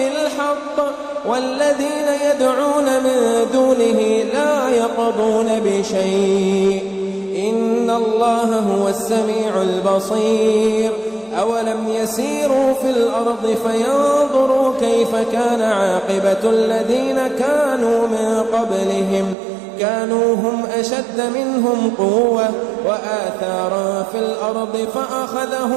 والذين يدعون من دونه لا يقضون بشيء إن الله هو السميع البصير. أولم يسيروا في الأرض فينظروا كيف كان عاقبة الذين كانوا من قبلهم كانوا هم أشد منهم قوة وآثارا في الأرض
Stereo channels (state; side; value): drops out; left; at 19.4 s